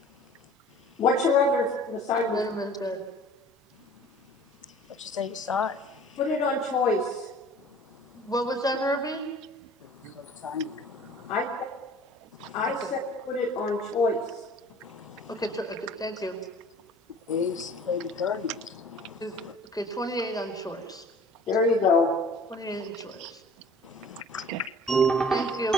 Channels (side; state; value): both; normal; correlation 0.48